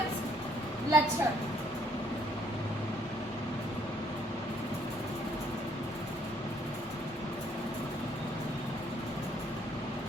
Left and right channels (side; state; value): both; normal; correlation 0.66